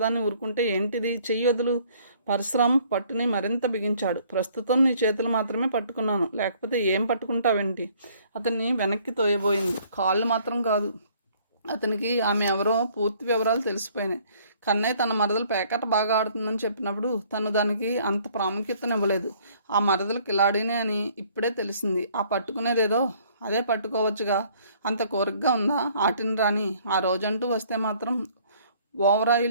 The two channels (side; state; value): both; inverted; correlation -0.60